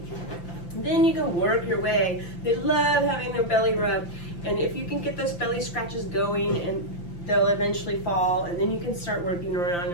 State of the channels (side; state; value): right; late; 5.8 ms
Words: Then you can work your way. They love having their belly rubbed. And if you can get those belly scratches going, and they'll eventually fall, and then you can start working around